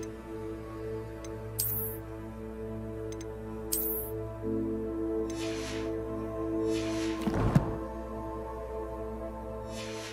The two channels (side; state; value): both; identical; correlation 1.00